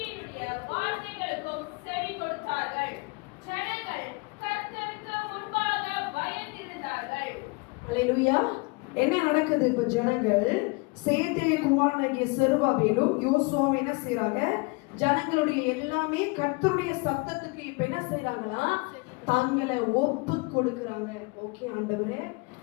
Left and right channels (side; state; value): right; quieter; 28.1 dB